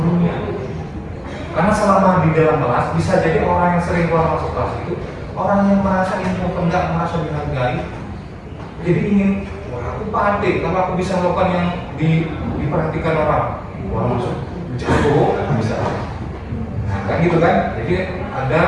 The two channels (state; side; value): identical; both; correlation 1.00